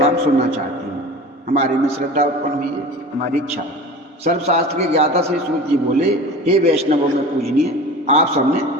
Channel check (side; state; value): both; normal; correlation 0.36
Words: सुनना चाहती हूँ। हमारे में श्रद्धा उत्पन्न हुई है, हमारी इच्छा। सर्वशास्त्र के ज्ञाता श्री सूत जी बोले, हे वैष्णवों में पूजनीय, आप सबने